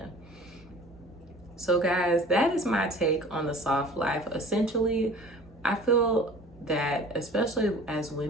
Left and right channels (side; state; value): both; normal; correlation 0.45